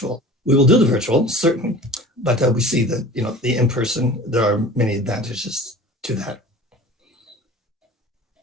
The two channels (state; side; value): normal; both; correlation 0.41